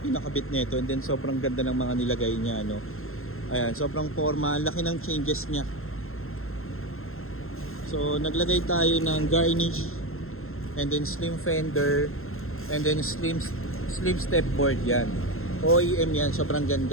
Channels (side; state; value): right; late; 0.61 ms